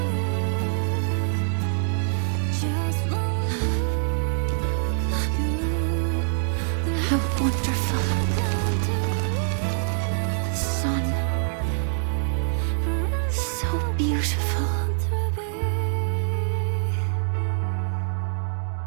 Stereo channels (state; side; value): silent; left; digital silence